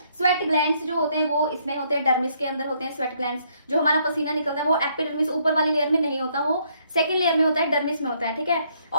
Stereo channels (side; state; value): both; inverted; correlation -0.69